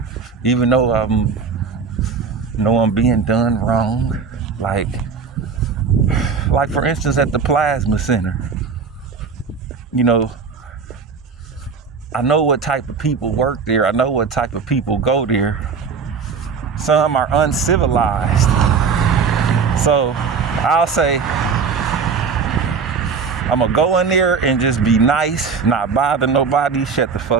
Even though I'm being done wrong. Like for instance, at the plasma center. I know what type of people work there. I know what type of people go there. Some are uncivilized. So I'll say, I'm gonna go in there and just be nice, not bother nobody, shut the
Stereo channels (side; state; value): left; quieter; 5.5 dB